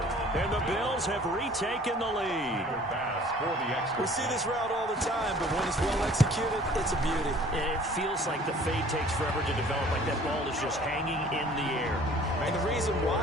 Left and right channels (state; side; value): normal; both; correlation 0.51